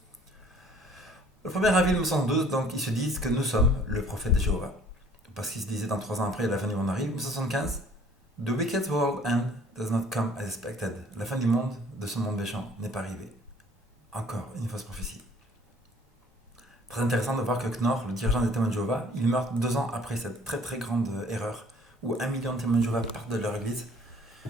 Le 1er avril 1912, donc ils se disent que nous sommes le prophète de Jéhovah. Parce qu'ils se disaient dans 3 ans après, la fin du monde arrive. 1975, The wicked world end does not come as expected. La fin du monde, de ce monde méchant, n'est pas arrivée. Encore une fausse prophétie. Très intéressant de voir que Knorr, le dirigeant des témoins de Jéhovah, il meurt 2 ans après cette très très grande erreur où 1 million de témoins de Jéhovah partent de leur église.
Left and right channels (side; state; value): both; normal; correlation 0.55